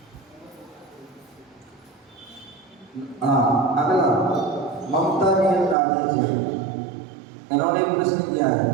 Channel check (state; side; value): drops out; left; at 5.8 s